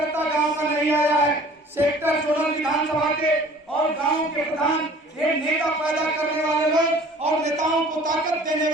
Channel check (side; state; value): both; normal; correlation 0.49